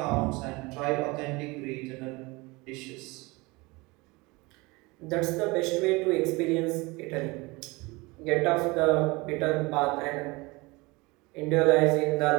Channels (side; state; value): left; quieter; 24.2 dB